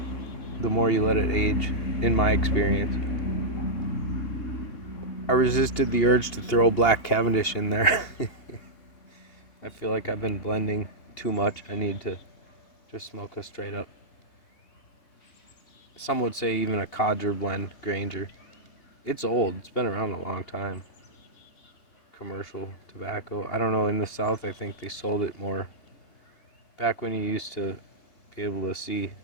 the more you let it age, in my experience. I resisted the urge to throw Black Cavendish in there. I feel like I've been blending too much. I need to just smoke a straight up. Some would say even a codger blend Granger. It's old. It's been around a long time. Commercial tobacco. I don't know. In the South, I think they sold it more. Back when you used to be able to see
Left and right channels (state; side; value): late; right; 2.8 ms